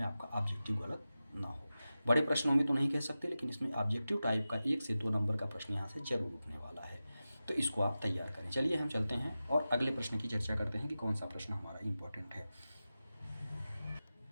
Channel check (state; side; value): inverted; both; correlation -0.94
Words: आपका ऑब्जेक्टिव गलत ना हो। बड़े प्रश्नों में तो नहीं कह सकते, लेकिन इसमें ऑब्जेक्टिव टाइप का 1 से 2 नंबर का प्रश्न यहाँ से जरूर उठने वाला है। तो इसको आप तैयार करें। चलिए हम चलते हैं और अगले प्रश्न की चर्चा करते हैं कि कौन सा प्रश्न हमारा इंपॉर्टेंट है।